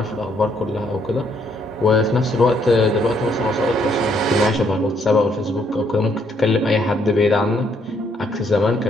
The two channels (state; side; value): normal; both; correlation 0.70